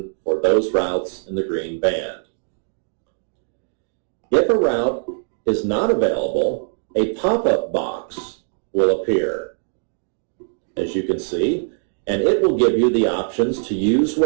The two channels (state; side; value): silent; left; digital silence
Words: for those routes in the green band. If a route is not available, a pop-up box will appear, as you can see, and it will give you the options to use